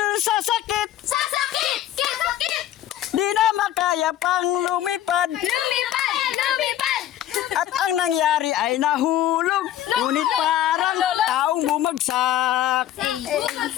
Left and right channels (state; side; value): quieter; right; 12.2 dB